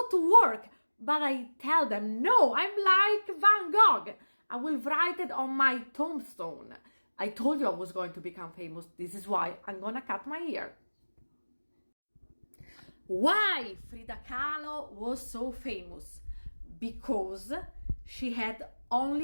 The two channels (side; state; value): both; inverted; correlation -1.00